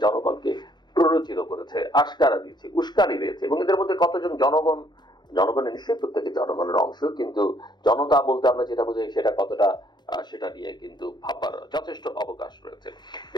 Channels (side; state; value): right; late; 0.21 ms